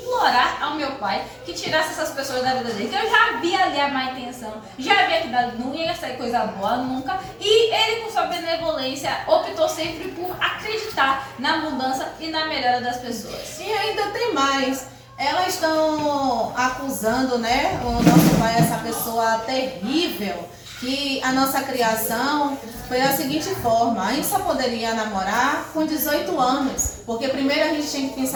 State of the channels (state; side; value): identical; both; correlation 1.00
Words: ao meu pai que tirasse essas pessoas da vida dele, que eu já vi ali a má intenção, já vi que não ia sair coisa boa nunca, e ele com sua benevolência optou sempre por acreditar na mudança e na melhora das pessoas. E ainda tem mais. Elas estão acusando, né, o nosso pai, essa pessoa terrível, que a nossa criação foi da seguinte forma: a gente só poderia namorar com 18 anos, porque primeiro a gente tinha que